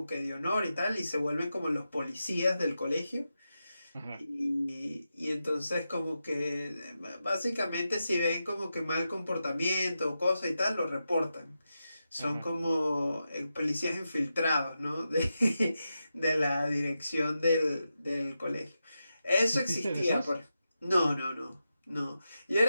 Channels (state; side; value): inverted; both; correlation -0.89